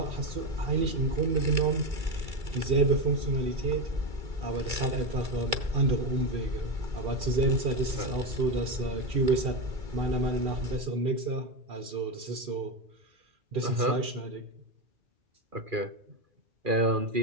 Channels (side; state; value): left; late; 2.2 ms